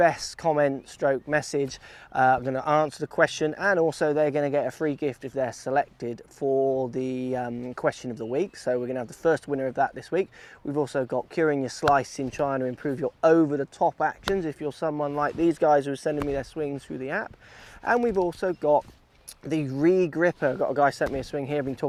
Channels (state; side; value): identical; both; correlation 1.00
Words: comment stroke message. I'm going to answer the question, and also they're going to get a free gift if they're selected for the question of the week. So we're going to have the first winner of that this week. We've also got curing your slice in trying to improve your over-the-top actions if you're someone like these guys who are sending me their swings through the app. And we've also got the re-gripper. I've got a guy sent me a swing here. I've been